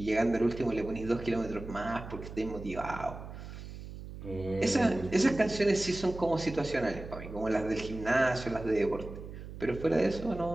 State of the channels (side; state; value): right; noise; hum, 11 dB below the sound